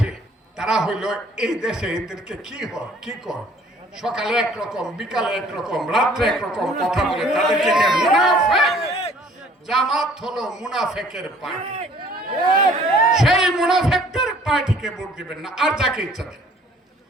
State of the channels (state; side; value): normal; both; correlation 0.56